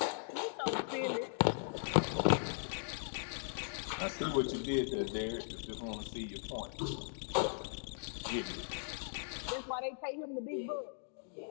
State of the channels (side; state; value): right; silent; digital silence